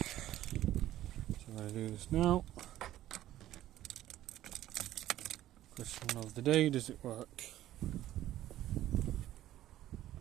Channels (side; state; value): left; quieter; 13.6 dB